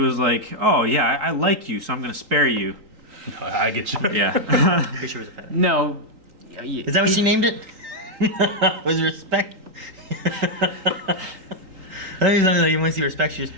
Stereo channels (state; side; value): late; left; 3.8 ms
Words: like, "Oh yeah, I like you, so I'm going to spare you." I get you. Yeah. Pretty sure it was a pet. No. Is that what she named it? Was respect? I think something like you want to see respect, you just